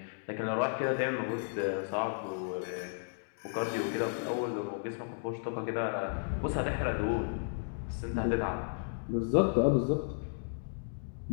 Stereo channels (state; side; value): silent; right; digital silence